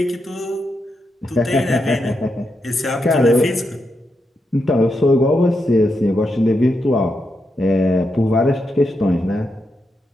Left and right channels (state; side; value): normal; both; correlation 0.84